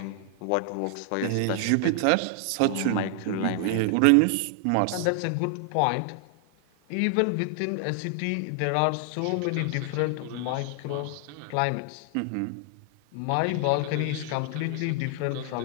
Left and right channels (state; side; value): different; both; correlation 0.00